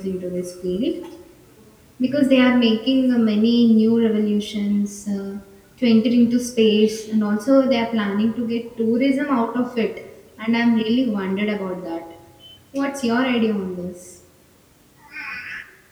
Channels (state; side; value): identical; both; correlation 1.00